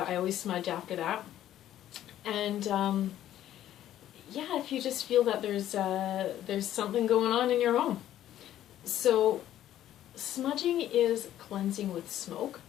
smudge after that. And if you just feel that there's something going on in your home. So smudging is cleansing with smoke.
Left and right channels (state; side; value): quieter; right; 12.2 dB